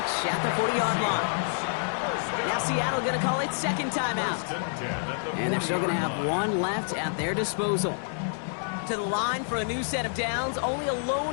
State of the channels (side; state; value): right; silent; digital silence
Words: at the 40-yard line. Now Seattle going to call it second timeout. And they're still going to have one left at their disposal. To the line for a new set of downs. Only a